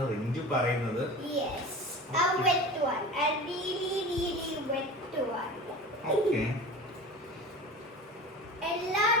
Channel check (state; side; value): normal; both; correlation 0.34